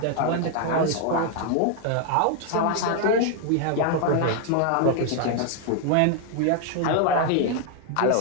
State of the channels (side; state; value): both; different; correlation 0.00